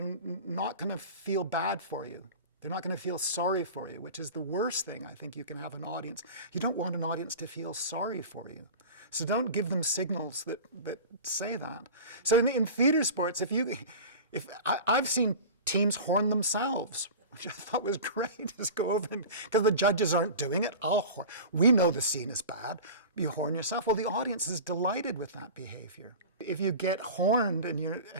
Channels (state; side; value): inverted; both; correlation -0.34